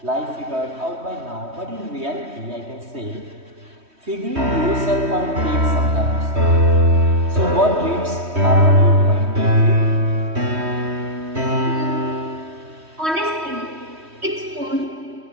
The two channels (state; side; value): late; left; 3.1 ms